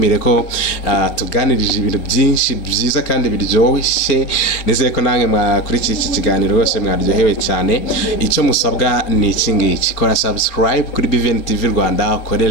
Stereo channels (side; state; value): right; late; 4.3 ms